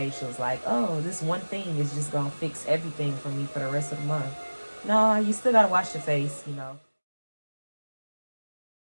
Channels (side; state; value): both; inverted; correlation -1.00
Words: Like, oh, this one thing is just gonna fix everything for me for the rest of the month. No, you still gotta wash your face, you know.